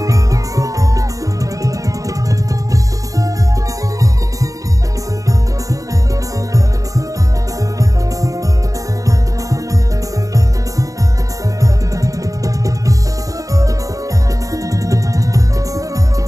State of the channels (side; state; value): left; late; 0.16 ms